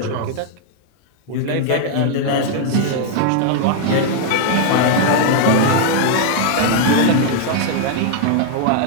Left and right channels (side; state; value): both; different; correlation 0.00